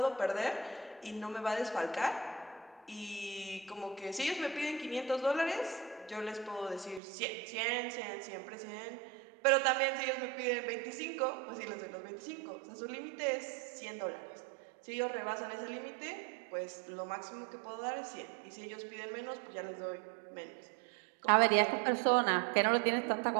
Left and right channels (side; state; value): left; drops out; at 7.0 s